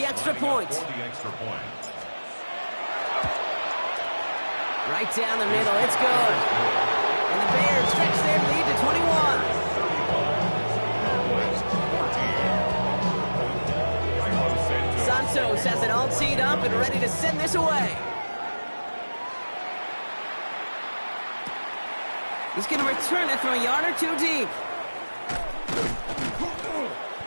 extra point. Right down the middle, it's good. And the Bears stretch their lead to 21. Santos has it all teed up and ready to send this away. He's going to return it from a yard or 2 deep.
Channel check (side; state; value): both; inverted; correlation -1.00